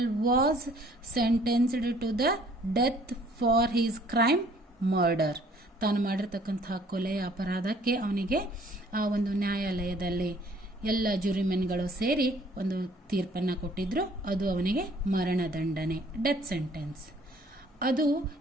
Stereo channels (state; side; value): normal; both; correlation 0.58